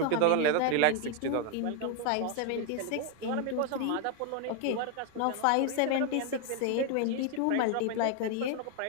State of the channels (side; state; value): both; different; correlation 0.01